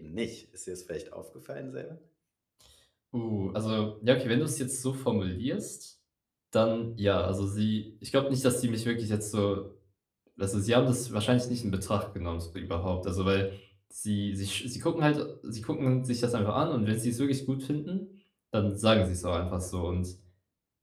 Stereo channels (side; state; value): both; identical; correlation 1.00